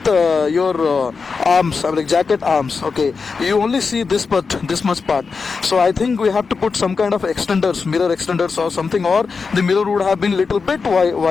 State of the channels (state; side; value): quieter; right; 4.9 dB